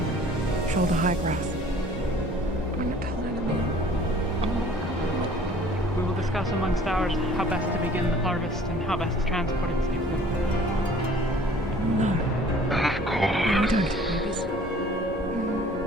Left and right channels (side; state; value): both; normal; correlation 0.52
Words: shoulder high grass. I'm not telling anyone. We will discuss amongst ours how best to begin the harvest and how best to transport it safely. No. Of course.